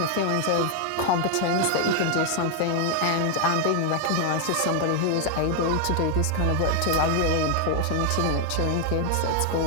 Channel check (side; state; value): both; different; correlation 0.00